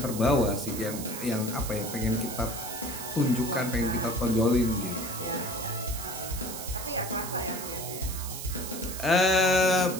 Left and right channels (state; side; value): noise; right; hiss, 8 dB below the sound